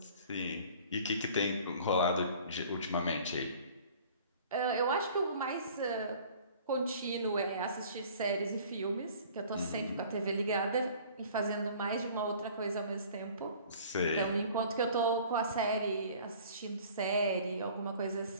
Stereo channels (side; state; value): both; inverted; correlation -0.49